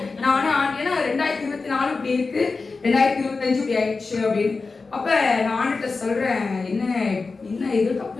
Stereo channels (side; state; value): right; quieter; 4.1 dB